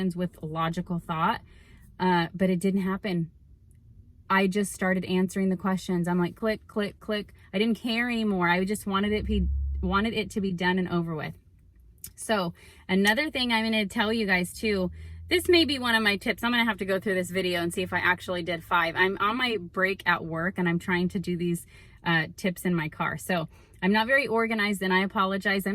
with logical thought. But it didn't happen. I just started answering the questions. I'm like, click, click, click. I didn't care anymore. I just wanted it to be done and over with. So another thing I'm going to tell you guys too, this may be one of my tips. I'm going to have to go through this video and see if I actually did 5. I'm on my break at work and I'm trying to do these tips in my car. So I'm not very organized and I apologize.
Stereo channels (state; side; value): identical; both; correlation 1.00